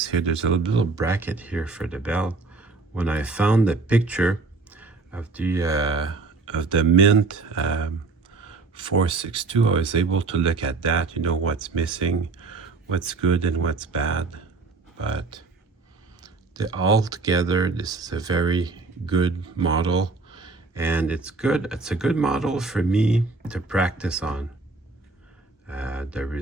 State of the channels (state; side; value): quieter; left; 3.9 dB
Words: here. There's a little bracket here for the bell. When I found the picture of the Mint 462, I was able to look at that, you know, what's missing, what's good and what's bad. But altogether, this is a very good model, and it's a good model for me to practice on. The